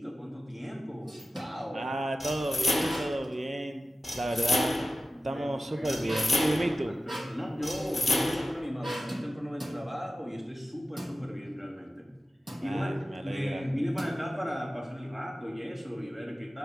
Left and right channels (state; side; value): normal; both; correlation 0.93